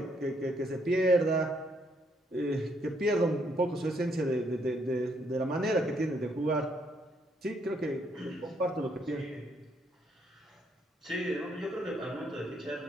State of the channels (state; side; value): normal; both; correlation 0.72